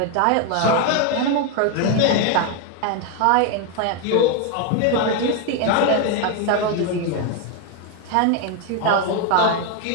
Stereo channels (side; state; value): both; different; correlation 0.01